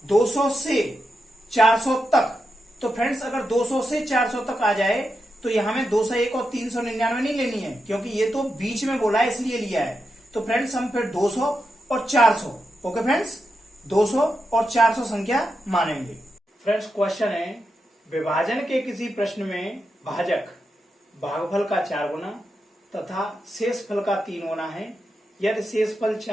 200 से 400 तक। तो फ्रेंड्स अगर 200 से 400 तक आ जाए तो यहां में 201 और 399 नहीं लेनी है, क्योंकि ये तो बीच में बोला है इसलिए लिया है। तो फ्रेंड्स हम फिर 200 और 400, ओके फ्रेंड्स 200 और 400 संख्या मानेंगे। फ्रेंड्स क्वेश्चन है, विभाजन के किसी प्रश्न में भाजक भागफल का 4 गुना तथा शेषफल का 3 गुना है। यदि शेषफल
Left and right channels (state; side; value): normal; both; correlation 0.87